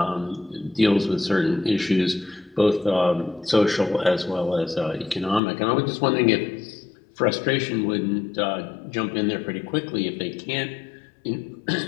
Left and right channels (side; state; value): right; drops out; at 5.4 s